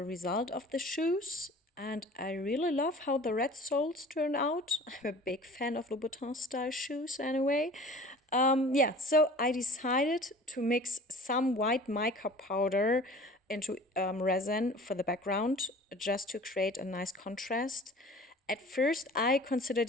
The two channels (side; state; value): both; normal; correlation 0.44